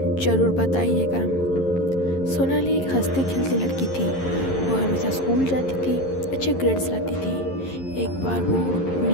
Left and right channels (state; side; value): late; right; 11 ms